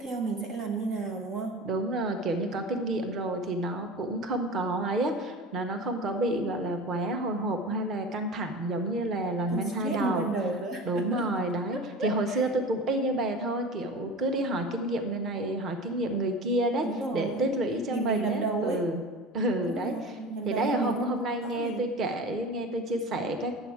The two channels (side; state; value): both; normal; correlation 0.33